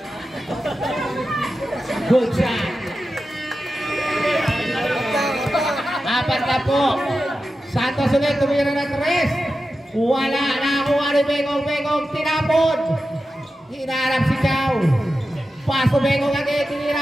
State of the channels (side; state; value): both; normal; correlation 0.92